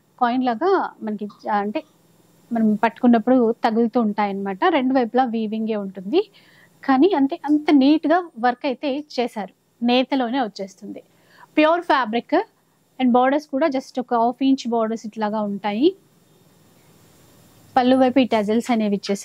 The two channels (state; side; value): identical; both; correlation 1.00